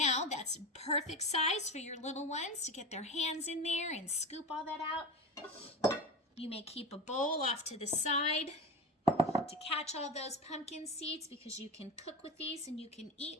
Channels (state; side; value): normal; both; correlation 0.25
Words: that's perfect size for your little ones to get their hands in there and scoop all that out. You may keep a bowl off to the side to catch all those pumpkin seeds, because you can cook with these and you can